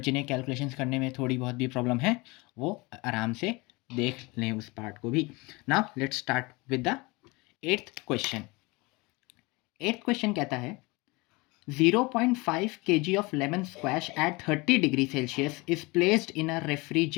जिन्हें कैलकुलेशंस करने में थोड़ी बहुत भी प्रॉब्लम है वो आराम से देख लें उस पार्ट को भी। Now let's start with the eighth question. Eighth question कहता है 0.5 kg of lemon squash at 30 degree Celsius is placed in a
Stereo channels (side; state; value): right; quieter; 25.0 dB